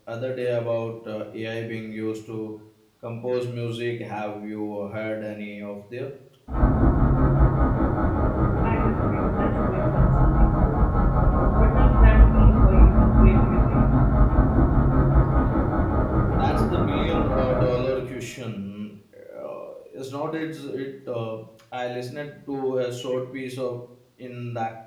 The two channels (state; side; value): identical; both; correlation 1.00